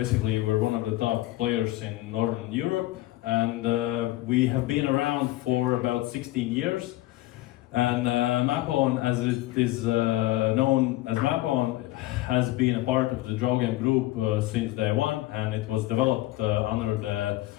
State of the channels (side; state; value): right; quieter; 17.4 dB